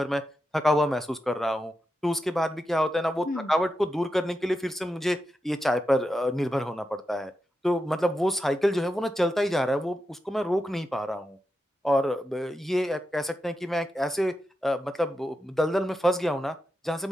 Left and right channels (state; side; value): normal; both; correlation 0.88